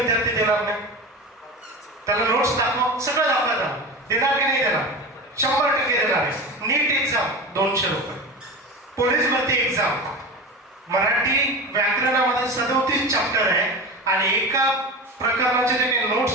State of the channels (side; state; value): both; normal; correlation 0.28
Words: देणार नाही? त्याला नोट्स दाखव, सगळं दाखवतात, देणार की नाही देणार? 100% देणार आहे. नीट एक्झाम 200 रुपये. पोलीस भरती एक्झाम मराठी व्याकरणामध्ये 37 चॅप्टर आहे आणि एका प्रकरणाचे जे काही